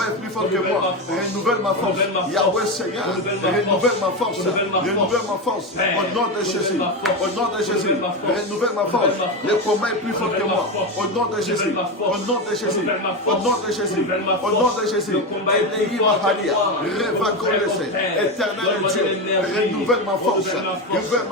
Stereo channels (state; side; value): normal; both; correlation 0.15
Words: est plus fort que moi. Renouvelle ma force, Yahweh Seigneur, renouvelle ma force, renouvelle ma force. Au nom de Jésus, au nom de Jésus, renouvelle ma force. Le combat est plus fort que moi. Au nom de Jésus, au nom de Jésus, au nom de Jésus, au nom de Jésus. Éternel Dieu, renouvelle ma force, renouvelle